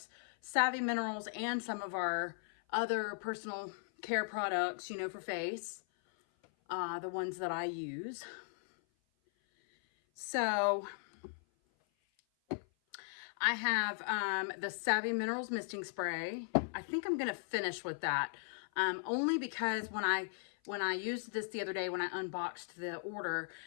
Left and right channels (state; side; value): silent; right; 53 dB below the other